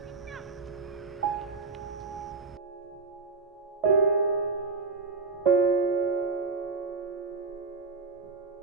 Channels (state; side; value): quieter; left; 4.4 dB